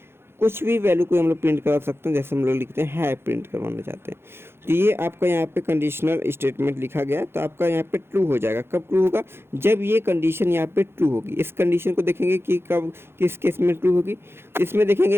कुछ भी वैल्यू को हम लोग प्रिंट करवा सकते हैं, जैसे हम लोग लिखते हैं है प्रिंट करवाना चाहते हैं। तो ये आपका यहाँ पे कंडीशनल स्टेटमेंट लिखा गया है, तो आपका यहाँ पे ट्रू हो जाएगा। कब ट्रू होगा, जब ये कंडीशन यहाँ पे ट्रू होगी। इस कंडीशन को देखेंगे कि कब किस केस में ट्रू होगी। इसमें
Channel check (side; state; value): left; late; 0.11 ms